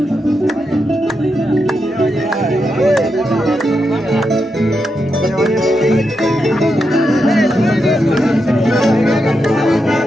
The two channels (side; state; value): both; normal; correlation 0.85